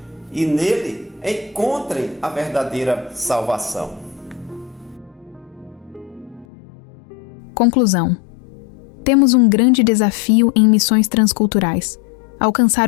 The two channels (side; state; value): right; drops out; at 6.5 s